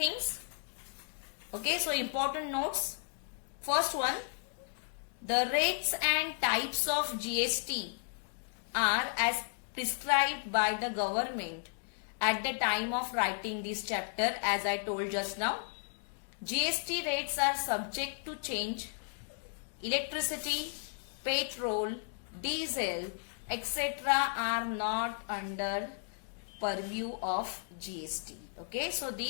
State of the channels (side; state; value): right; silent; digital silence